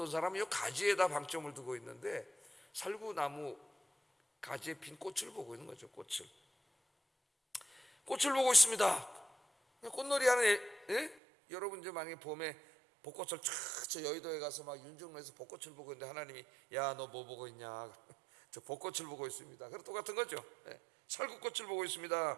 사람은 이 가지에다 방점을 두고 있는데 살구나무 가지에 핀 꽃을 보고 있는 거죠. 꽃을 보고 있습니다. 꽃놀이 하는 여러분 이제 만약에 봄에 벚꽃을 저 여의도에 가서 막 윤중로에서 벚꽃을 보고 있는데 하나님이 야 너 뭐 보고 있냐? 저 벚꽃을 보고 있습니다. 그럼 똑같은 거죠. 살구꽃을 보고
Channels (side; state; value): left; drops out; at 11.2 s